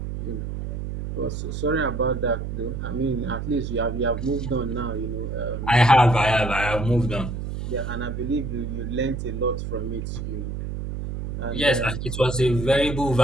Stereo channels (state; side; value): noise; right; hum, 5 dB below the sound